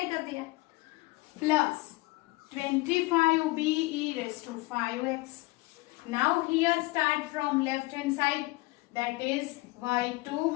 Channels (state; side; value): quieter; right; 22.6 dB